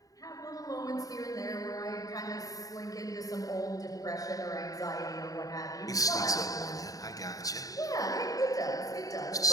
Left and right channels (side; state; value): right; late; 0.17 ms